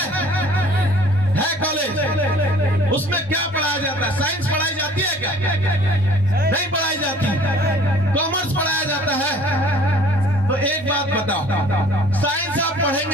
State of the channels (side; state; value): both; normal; correlation 0.53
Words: कॉलेज, उसमें क्या पढ़ाया जाता है? साइंस पढ़ाई जाती है क्या? नहीं पढ़ाई जाती। कॉमर्स पढ़ाया जाता है। तो एक बात बताओ, साइंस आप